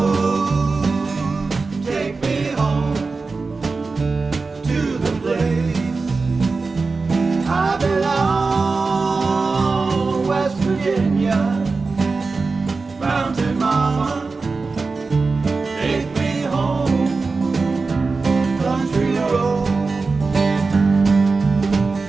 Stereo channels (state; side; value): quieter; left; 4.1 dB